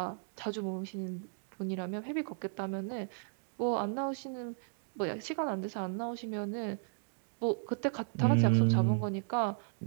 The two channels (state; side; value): silent; left; digital silence